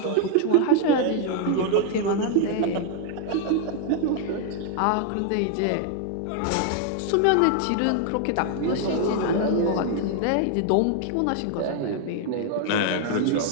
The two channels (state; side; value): different; both; correlation 0.00